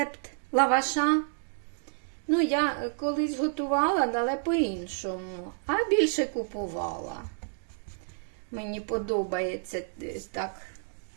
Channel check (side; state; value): left; silent; digital silence